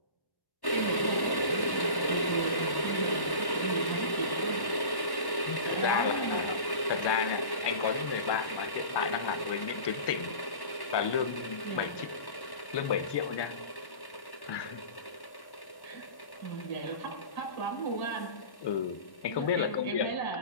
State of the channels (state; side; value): late; right; 1.1 ms